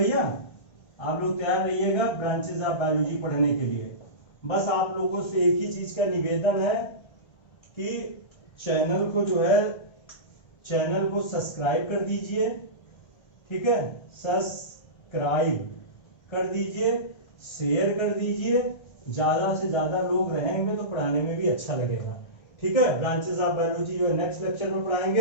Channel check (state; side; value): late; right; 1.3 ms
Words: आप लोग तैयार रहिएगा ब्रांचेस ऑफ बायोलॉजी पढ़ने के लिए। बस आप लोगों से एक ही चीज का निवेदन है कि चैनल को सब्सक्राइब कर दीजिए, ठीक है, सब्सक्राइब कर दीजिए, शेयर कर दीजिए। ज्यादा से ज्यादा लोग रहेंगे तो पढ़ाने में भी अच्छा लगेगा। ठीक है, ब्रांचेस ऑफ बायोलॉजी जो है नेक्स्ट लेक्चर में